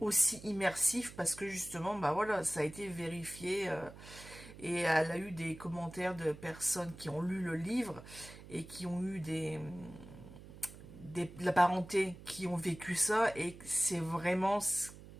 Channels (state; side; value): noise; right; hum, 16 dB below the sound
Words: immersif, parce que justement, bah voilà, ça a été vérifié. Et elle a eu des commentaires de personnes qui ont lu le livre et qui ont eu de la parenté qui ont vécu ça, et c'est vraiment